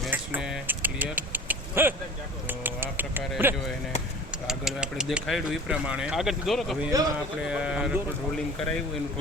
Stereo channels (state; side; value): normal; both; correlation 0.41